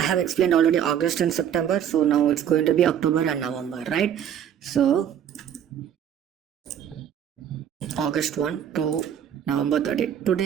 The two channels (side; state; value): left; quieter; 9.3 dB